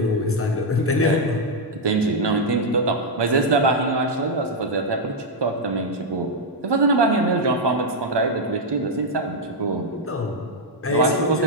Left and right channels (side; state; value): both; normal; correlation -0.01